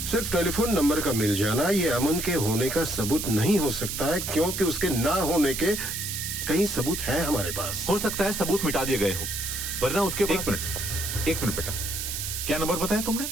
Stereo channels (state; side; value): noise; right; hiss, 4 dB below the sound